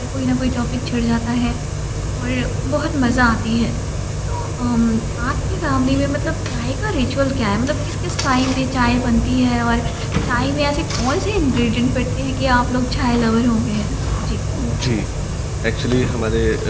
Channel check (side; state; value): both; identical; correlation 1.00